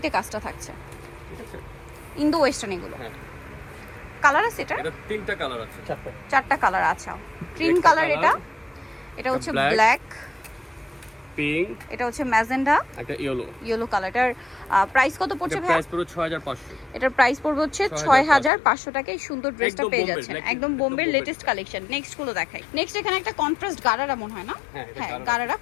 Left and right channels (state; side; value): drops out; right; at 18.5 s